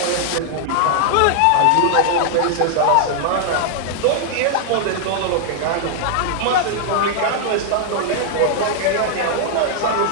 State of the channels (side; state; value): both; different; correlation 0.00